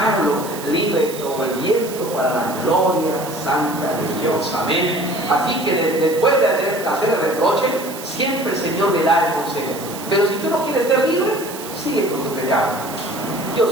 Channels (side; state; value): right; noise; hiss, 13 dB below the sound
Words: libre como el viento para la gloria santa de Dios. Amén. Así que después de hacer el reproche, siempre el Señor le da el consejo. Pero si tú no quieres ser libre, sigue con tu pecado. Yo